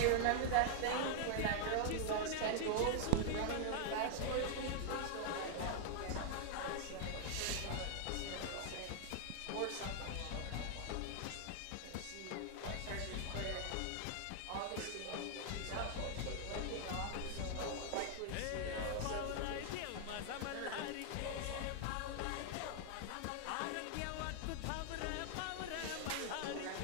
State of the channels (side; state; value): both; different; correlation 0.00